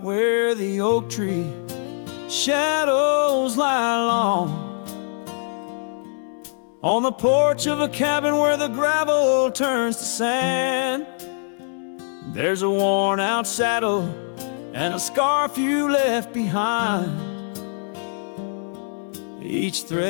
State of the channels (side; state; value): right; silent; digital silence